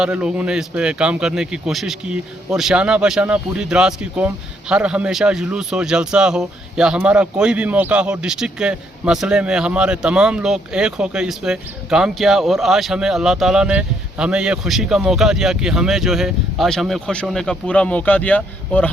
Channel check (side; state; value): both; normal; correlation 0.71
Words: लोगों ने इस पे काम करने की कोशिश की। और शाना बशाना पूरी द्रास की कौम हर हमेशा जुलूस हो, जलसा हो या हमारा कोई भी मौका हो, डिस्ट्रिक्ट के मसले में हमारे तमाम लोग एक होकर इस पे काम किया। और आज हमें अल्लाह ताला ने हमें ये खुशी का मौका दिया कि हमें जो है आज हमें खुश होने का पूरा मौका दिया और